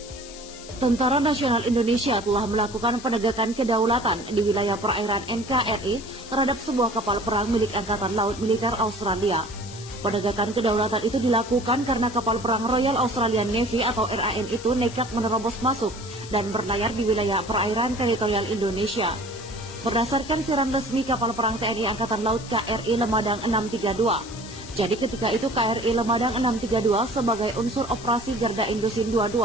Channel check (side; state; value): left; noise; hiss, 16 dB below the sound